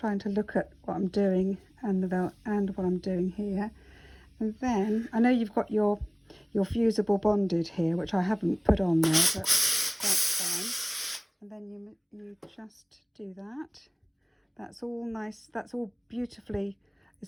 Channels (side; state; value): both; identical; correlation 1.00